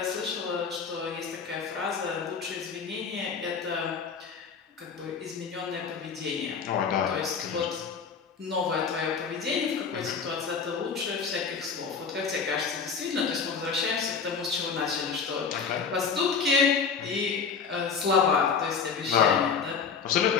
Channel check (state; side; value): quieter; right; 5.9 dB